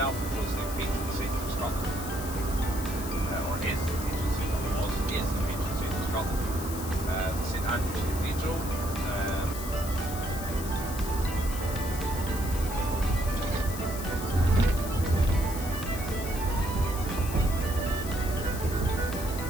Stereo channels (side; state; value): left; noise; hiss, 10 dB below the sound